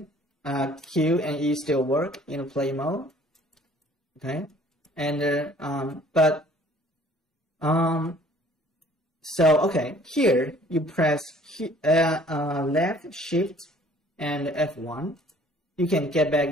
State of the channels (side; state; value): both; normal; correlation 0.55